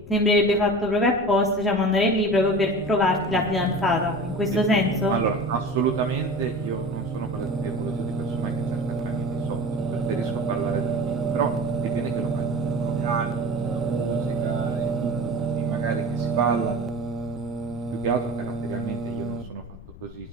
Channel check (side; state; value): left; noise; rumble, 17 dB below the sound